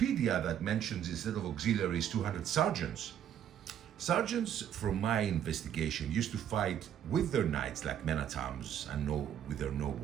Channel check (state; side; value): quieter; left; 9.9 dB